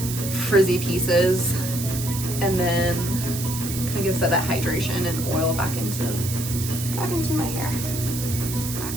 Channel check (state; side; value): noise; right; hiss, 7 dB below the sound